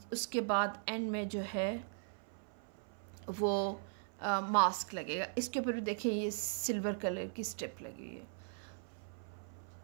उसके बाद एंड में जो है वो मास्क लगेगा। इसके ऊपर भी देखिए ये सिल्वर कलर की स्ट्रिप लगी हुई है।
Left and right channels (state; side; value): silent; left; 52 dB below the other